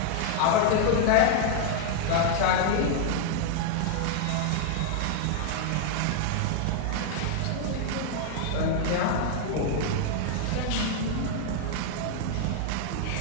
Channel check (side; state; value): both; different; correlation 0.00